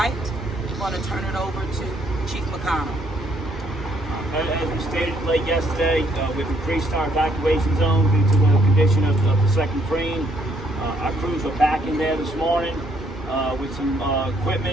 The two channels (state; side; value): normal; both; correlation 0.69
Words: I'm going to turn it over to Chief McConnell. As we stated late yesterday, we've increased our evacuation zone due to the condition of the second crane. Our crews are back in there this morning with some